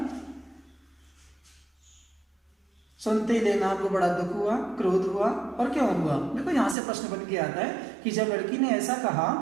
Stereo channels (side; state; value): left; drops out; at 6.8 s